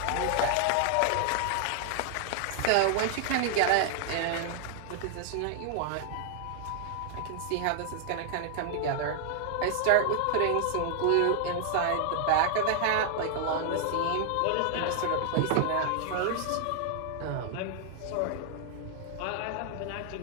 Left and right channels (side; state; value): both; different; correlation 0.00